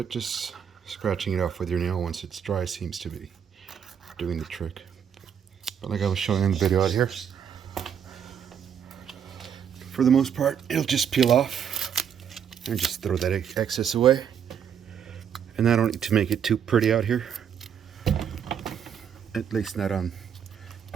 just scratching it off with your nail once it's dry seems to be doing the trick. But like I was showing in the video out here, for the most part, it'll just peel off and just throw that excess away. And I don't need to make it too pretty out here, at least not on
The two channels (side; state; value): left; quieter; 8.2 dB